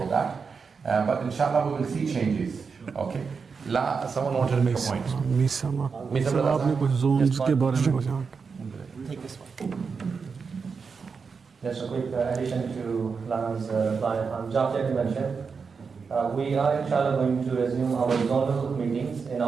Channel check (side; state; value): left; quieter; 5.4 dB